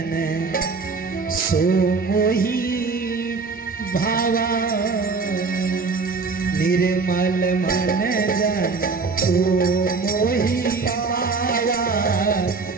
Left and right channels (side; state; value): left; quieter; 4.4 dB